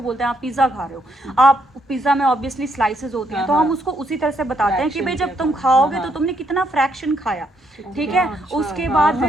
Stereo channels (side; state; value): both; normal; correlation 0.74